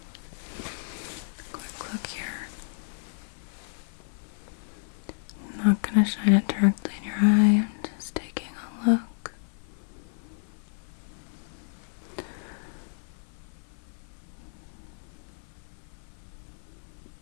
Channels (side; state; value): right; silent; 56 dB below the other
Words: quick look here. I'm not going to shine it directly in your eye, I'm just taking a look.